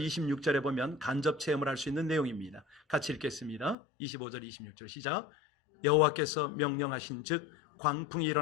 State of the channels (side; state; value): right; drops out; at 3.8 s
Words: 26절에 보면 간접 체험을 할 수 있는 내용입니다. 같이 읽겠습니다. 25절, 26절 시작. 여호와께서 명령하신 즉 광풍이